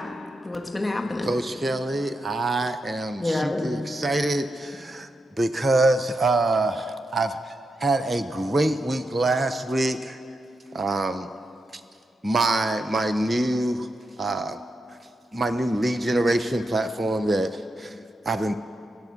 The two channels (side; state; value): both; normal; correlation 0.86